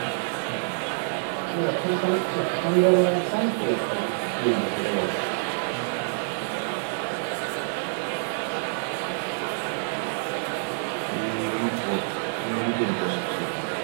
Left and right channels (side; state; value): left; silent; digital silence